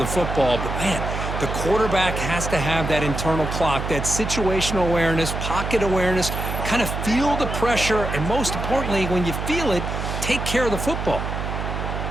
football. But, man, the quarterback has to have that internal clock, that situational awareness, pocket awareness, kind of feel the pressure, and most importantly, when you feel it, take care of the football.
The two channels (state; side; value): noise; right; hum, 4 dB below the sound